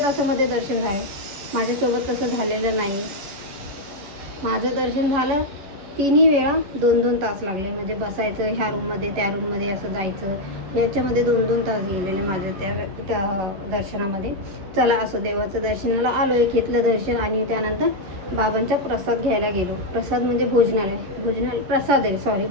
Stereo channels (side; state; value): left; late; 11 ms